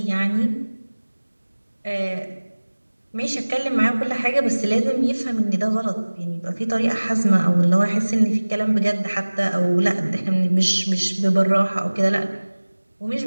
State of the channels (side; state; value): both; inverted; correlation -1.00